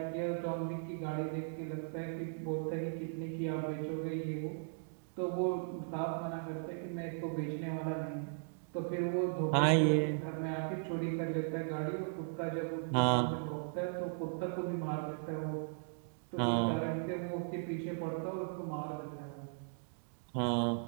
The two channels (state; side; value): silent; left; digital silence